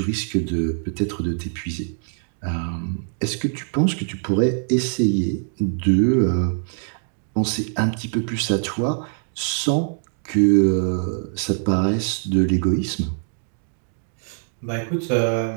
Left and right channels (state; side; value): silent; left; 63 dB below the other